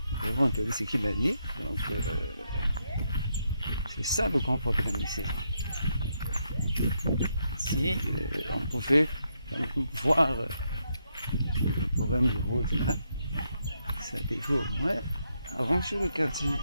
Vous avez entendu ce qu'il a dit. Donc, c'est ça le grand problème ici. Si on pouvait voir le problème de route là, ça devait au moins arranger le quartier.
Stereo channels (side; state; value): both; inverted; correlation -0.79